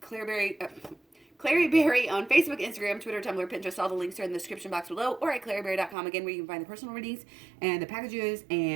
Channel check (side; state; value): left; drops out; at 6.0 s